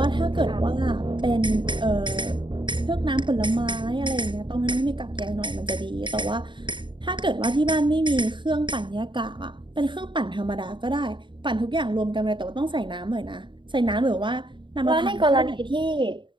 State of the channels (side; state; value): left; late; 0.23 ms